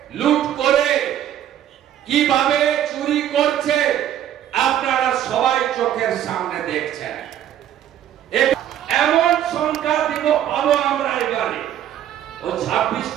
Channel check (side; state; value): left; quieter; 11.0 dB